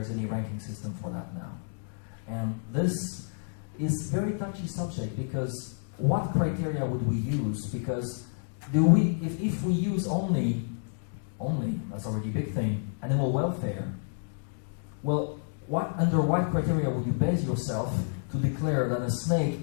any ranking system for that now. And this is very touchy subject because what criteria would we use? Because if we use only, that's already a big thing, animal welfare, well, under what criteria would you base yourself to declare that a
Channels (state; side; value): silent; right; digital silence